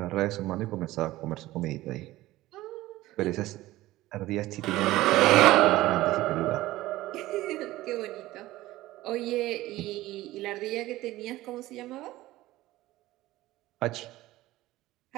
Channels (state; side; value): quieter; left; 16.9 dB